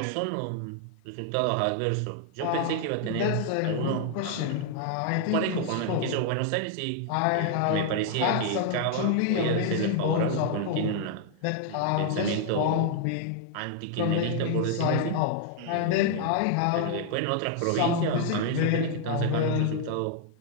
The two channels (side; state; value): both; different; correlation 0.00